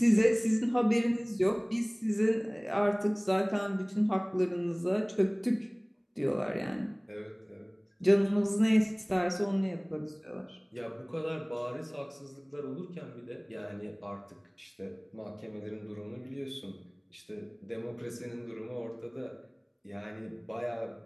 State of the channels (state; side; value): identical; both; correlation 1.00